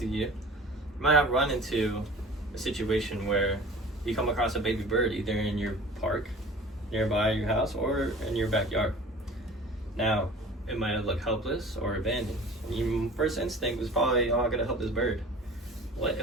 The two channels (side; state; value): both; normal; correlation 0.43